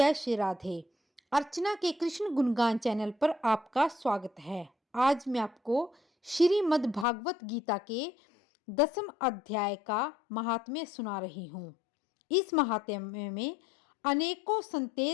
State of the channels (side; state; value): right; drops out; at 7.1 s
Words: श्री राधे। अर्चना के कृष्ण गुणगान चैनल पर आपका स्वागत है। आज मैं आपको श्रीमद् भागवत गीता के 10वें अध्याय का महात्म्य सुना रही हूँ। इस महात्म्य में अनेकों